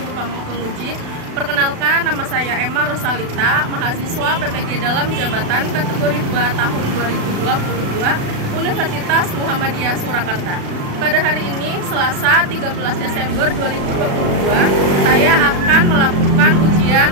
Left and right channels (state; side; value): late; left; 36 ms